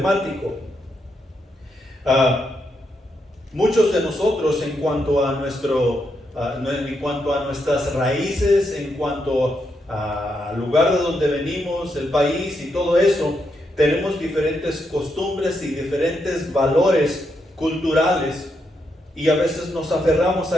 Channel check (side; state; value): both; normal; correlation 0.81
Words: Muchos de nosotros, en cuanto a nuestras raíces, en cuanto al lugar de donde venimos, el país y todo eso, tenemos diferentes costumbres y diferentes valores culturales, y a veces nos aferramos